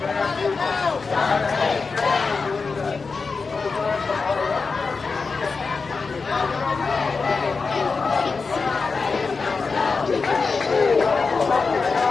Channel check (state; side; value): quieter; right; 4.6 dB